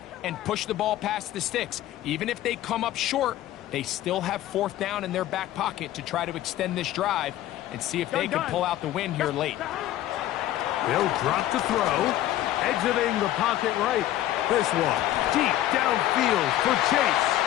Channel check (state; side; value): quieter; right; 13.7 dB